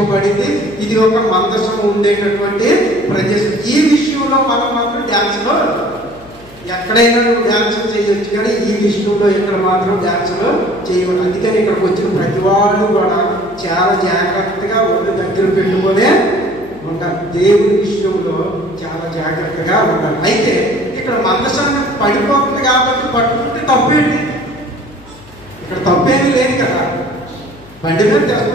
ఇది ఒక మందసం ఉండేటటువంటి ప్రదేశం. ఈ విషయంలో మనం మాత్రం డ్యాన్స్లో ఎక్కడైనా నువ్వు డ్యాన్స్ చేయొచ్చు, కానీ ఈ విషయంలో ఇక్కడ మాత్రం డ్యాన్స్లో చేయకూడదు. అందుకని ఇక్కడికి వచ్చిన ప్రతి వాళ్ళు కూడా చాలా జాగ్రత్తగా ఒళ్ళు దగ్గర పెట్టుకునే ఉండాలి. దేవుని విషయంలో చాలా జాగ్రత్తగా ఉండాలి. అయితే ఇక్కడ మందసాన్ని పడిపోతుంది కాబట్టి పట్టుకుంటే తప్పేంటి? ఇక్కడ తప్పేమీ లేదు కదా. బండి మీద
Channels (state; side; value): noise; left; hum, 24 dB below the sound